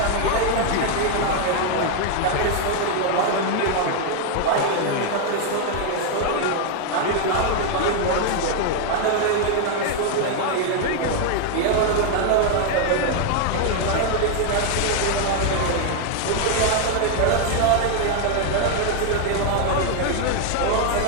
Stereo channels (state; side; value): different; both; correlation 0.00